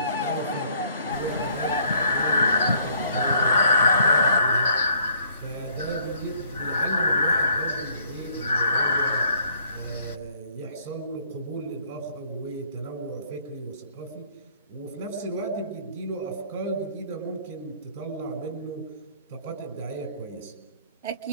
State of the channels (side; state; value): both; inverted; correlation -0.61